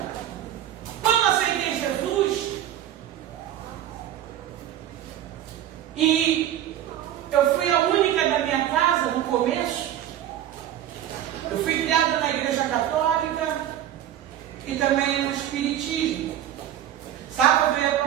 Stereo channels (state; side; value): quieter; left; 11.6 dB